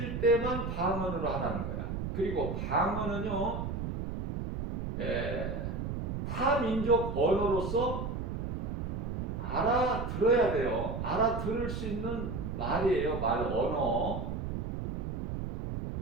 때만 방언으로 하라는 거야. 그리고 방언은요 타민족 언어로서 알아들어야 돼요. 알아들을 수 있는 말이에요. 언어.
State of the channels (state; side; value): noise; right; rumble, 4 dB below the sound